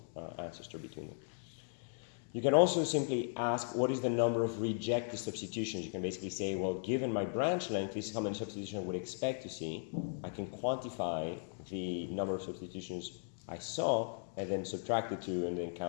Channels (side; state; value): right; silent; digital silence